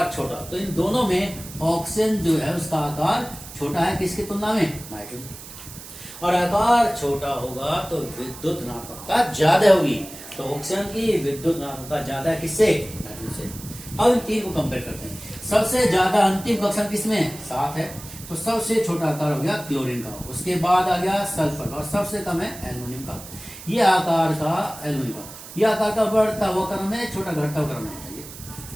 छोटा। तो इन दोनों में ऑक्सीजन जो है उसका आकार छोटा है किसकी तुलना में? नाइट्रोजन। और आकार छोटा होगा तो विद्युत ऋणात्मकता ज्यादा होगी। तो ऑक्सीजन की विद्युत ऋणात्मकता ज्यादा है किससे? नाइट्रोजन से। अब इन 3 को कंपेयर करते हैं। सबसे ज्यादा अंतिम कक्षा किसमें? 7 है। तो सबसे छोटा आकार हो गया क्लोरीन का, उसके बाद आ गया सल्फर का और सबसे कम है एल्युमिनियम का। ये आकार का एल्युमिनियम का, ये आकार का बढ़ता हुआ क्रम है, छोटा घटता हुआ क्रम है।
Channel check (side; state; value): right; noise; hiss, 15 dB below the sound